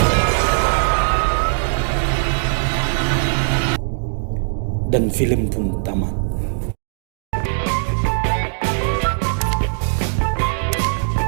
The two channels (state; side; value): silent; left; digital silence